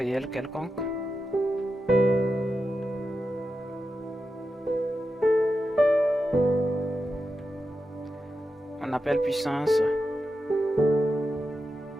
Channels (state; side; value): normal; both; correlation 0.89